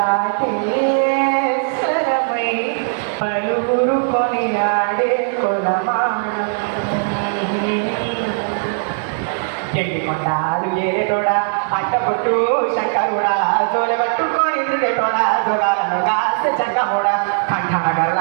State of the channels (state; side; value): silent; left; digital silence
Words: స్వరమై పలువురు కొని ఆడే కొలమానం కొండాలు ఏరేటోడా అట్టపుట్టు శంకరుడా జోలి పట్టుకొని తిరిగేటోడా జోగాలను దాసే జంగమోడా కంఠాన